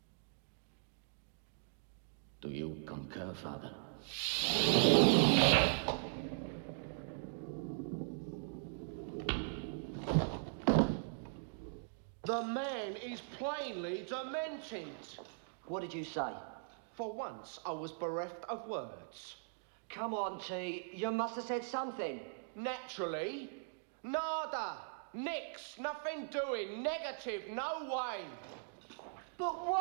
Do you concur, Father? The man is plainly demented. What did you say? For once, I was bereft of words. Come on, T. You must have said something. Naturally. Nada. Nix. Nothing doing. Negative. No way. But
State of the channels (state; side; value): silent; left; digital silence